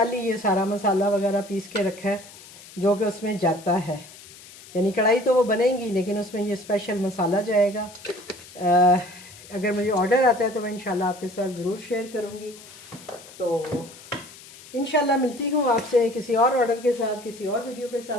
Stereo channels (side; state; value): left; noise; hiss, 19 dB below the sound